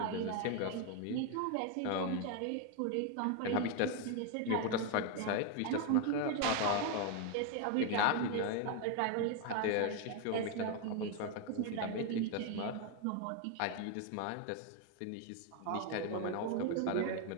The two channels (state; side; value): different; both; correlation 0.01